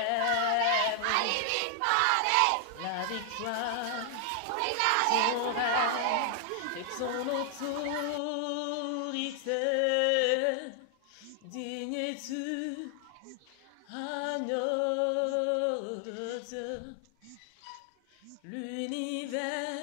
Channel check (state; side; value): different; both; correlation 0.00